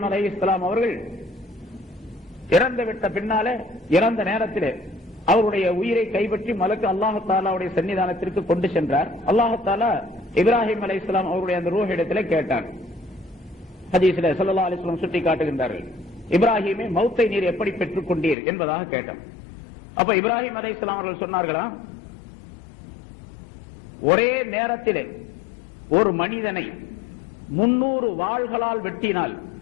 அலைஹிஸ்ஸலாம் அவர்கள் இறந்து விட்ட பின்னாலே, இறந்த நேரத்திலே அவருடைய உயிரை கைப்பற்றி மலக்கு அல்லாஹ் தஆலாவுடைய சன்னிதானத்திற்கு கொண்டு சென்றார். அல்லாஹ் தஆலா இப்ராஹிம் அலைஹிஸ்ஸலாம் அவருடைய அந்த ரூஹ் இடத்திலே கேட்டார். ஹதீஸிலே ஸல்லல்லாஹு அலைஹி வஸல்லம் சுட்டி காட்டுகின்றார்கள், இப்ராஹிமே மௌத்தை நீர் எப்படி பெற்றுக் கொண்டீர் என்பதாக கேட்டார். அப்ப இப்ராஹிம் அலைஹிஸ்ஸலாம் அவர்கள் சொன்னார்களா, ஒரே நேரத்திலே ஒரு மனிதனை 300 வாள்களால் வெட்டினால்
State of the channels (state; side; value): drops out; right; at 18.4 s